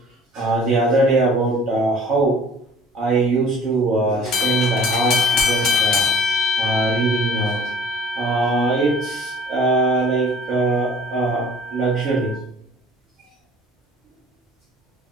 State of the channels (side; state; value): both; normal; correlation 0.49